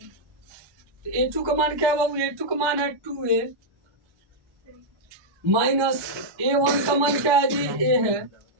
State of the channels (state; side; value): late; left; 1.2 ms